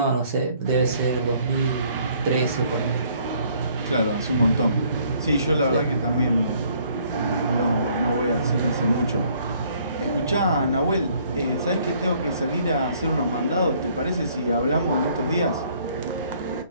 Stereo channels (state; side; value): inverted; both; correlation -0.62